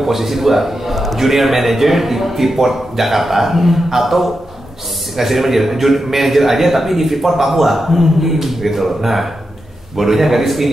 posisi 2, junior manager di Freeport Jakarta atau nggak sih manager aja tapi di Freeport Papua, gitu loh. Nah, bodohnya gadis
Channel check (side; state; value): both; normal; correlation 0.88